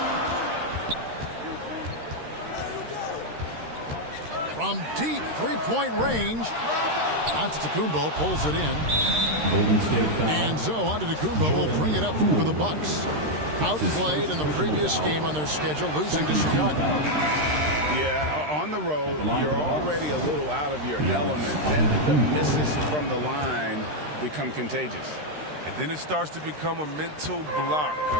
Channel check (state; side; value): late; left; 13 ms